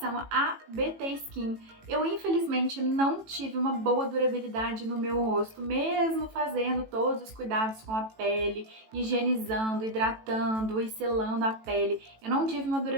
a BT Skin, eu infelizmente não tive uma boa durabilidade no meu rosto, mesmo fazendo todos os cuidados com a pele, higienizando, hidratando e selando a pele. Eu não tive uma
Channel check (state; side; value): late; left; 18 ms